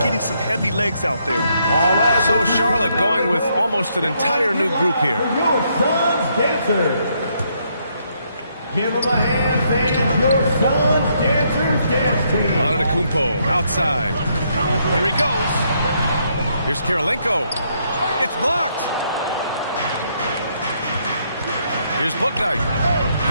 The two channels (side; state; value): both; inverted; correlation -0.74